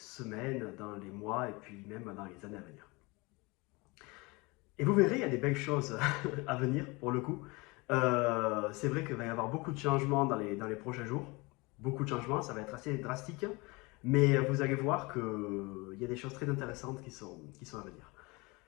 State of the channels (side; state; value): right; quieter; 25.6 dB